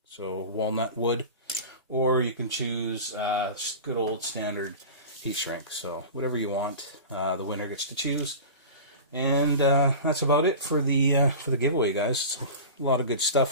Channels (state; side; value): inverted; both; correlation -0.32